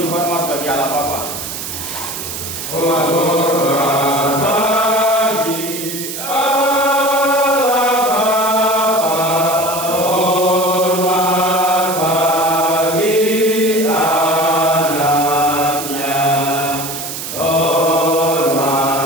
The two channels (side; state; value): right; noise; hiss, 7 dB below the sound